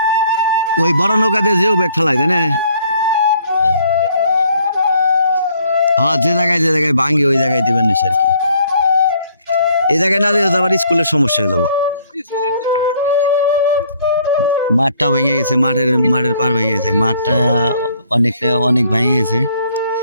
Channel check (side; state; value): both; inverted; correlation -0.63